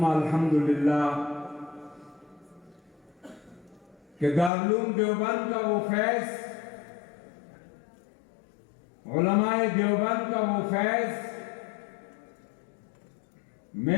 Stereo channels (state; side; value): drops out; right; at 4.5 s